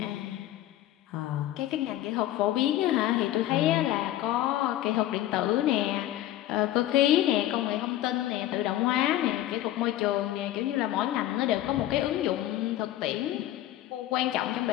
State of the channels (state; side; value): quieter; right; 14.0 dB